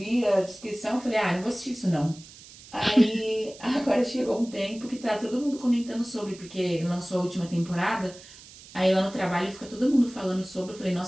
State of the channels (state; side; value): noise; right; hiss, 19 dB below the sound